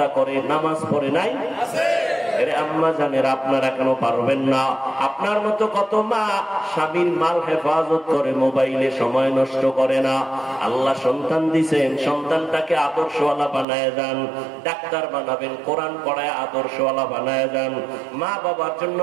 করে নামাজ পড়ে নাই? আম্মা জানেরা, আপনারা কেন পারবেন না? আপনার মতো কত মা স্বামীর মাল হেফাজত করে, মোবাইলে সময় নষ্ট করে না। আল্লাহ সন্তান দিছেন, সন্তানটাকে আদর্শওয়ালা বানায় যান। ডাক্তার বানাবেন, কোরআন পড়ায় আদর্শওয়ালা বানায় যান। মা বাবার জন্য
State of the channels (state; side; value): drops out; left; at 13.7 s